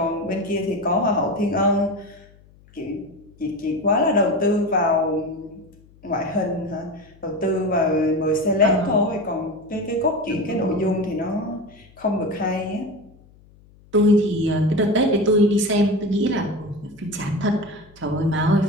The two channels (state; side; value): noise; left; hum, 27 dB below the sound